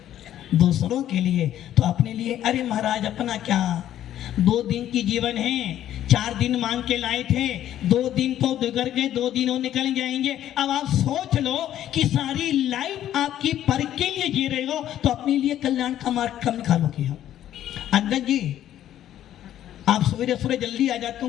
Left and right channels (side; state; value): right; quieter; 11.8 dB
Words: दूसरों के लिए, तो अपने लिए अरे महाराज अपना क्या, 2 दिन की जीवन है, 4 दिन मांग के लाए थे, 2 दिन तो गुजर गए, 2 दिन और निकल जाएंगे। अब आप सोच लो कि सारी लाइफ आपकी पर के लिए जी रहे हो तो अपने लिए कल्याण का मार्ग कम निकालोगे। हम अंगद जी, आप सवेरे सवेरे जल्दी आ जाते हो,